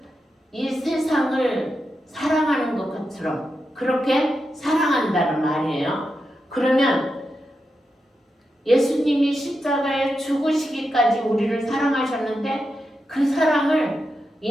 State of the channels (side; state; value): both; normal; correlation 0.87